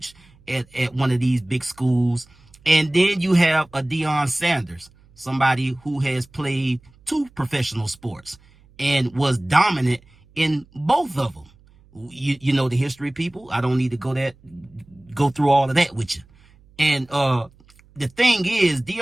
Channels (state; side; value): noise; right; hum, 29 dB below the sound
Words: at one of these big schools. And then you have a Deion Sanders, somebody who has played 2 professional sports and was dominant in both of them. You know the history, people. I don't need to go through all of that with you. And the thing is,